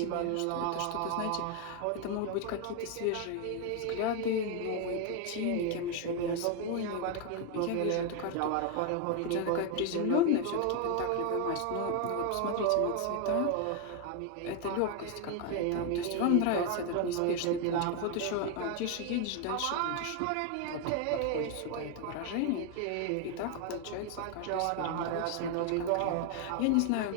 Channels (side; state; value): both; different; correlation 0.01